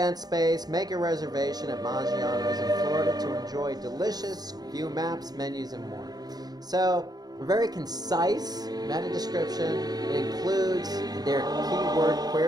space, make a reservation at Maggiano's in Florida to enjoy delicious, view maps, menus, and more. So a very concise meta description. It includes their keyword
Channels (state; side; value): late; left; 0.19 ms